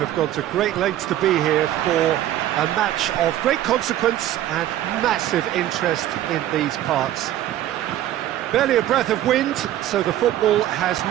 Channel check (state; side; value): quieter; left; 12.9 dB